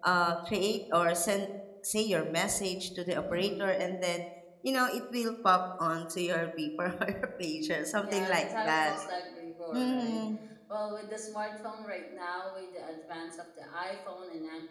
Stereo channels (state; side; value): identical; both; correlation 1.00